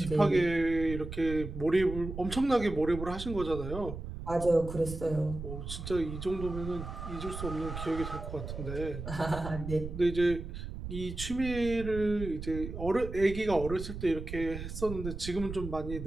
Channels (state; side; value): noise; right; rumble, 8 dB below the sound